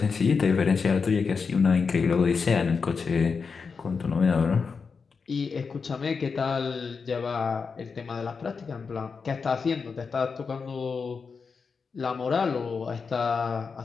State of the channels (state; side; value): quieter; right; 5.2 dB